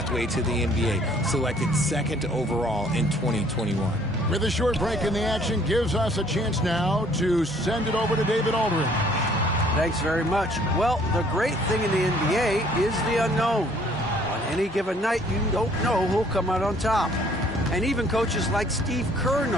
to the NBA, selected second overall in 2021. With a short break in the action, gives us a chance now to send it over to David Aldridge. Thanks very much. Well, the great thing in the NBA is the unknown. On any given night, you don't know who'll come out on top. And even coaches like Steve Kerr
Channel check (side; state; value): both; normal; correlation 0.59